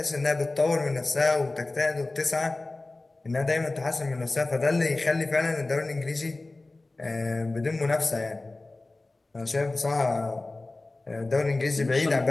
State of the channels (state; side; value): quieter; right; 3.1 dB